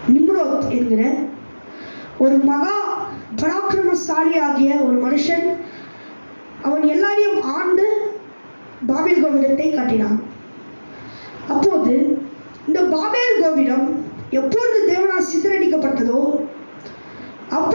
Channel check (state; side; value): inverted; both; correlation -1.00